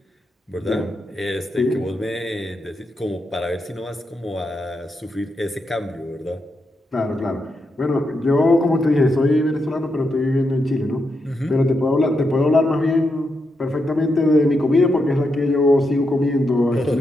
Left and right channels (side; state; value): both; normal; correlation 0.84